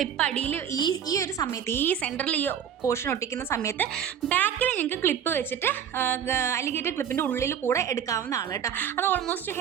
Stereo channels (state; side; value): quieter; left; 8.8 dB